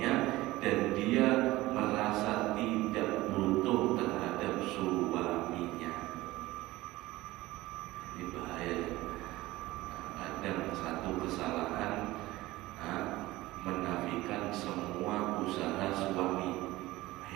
dan dia merasa tidak butuh terhadap suaminya. Ini bahaya. Kadang satu kesalahan menafikan semua usaha suami.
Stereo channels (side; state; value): left; quieter; 18.3 dB